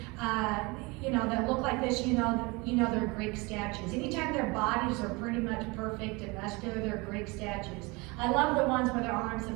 that look like this, you know they're Greek statues. Anytime their bodies are pretty much perfect and muscular, they're Greek statues. I love the ones where their arms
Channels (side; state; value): left; quieter; 25.9 dB